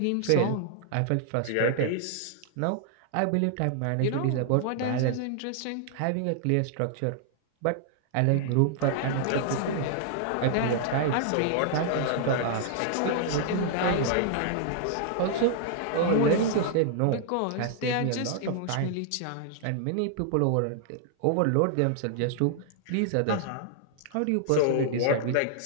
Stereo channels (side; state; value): both; different; correlation 0.00